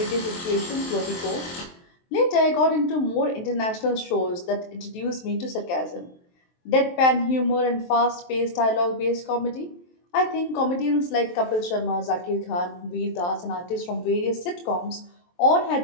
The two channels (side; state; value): right; late; 23 ms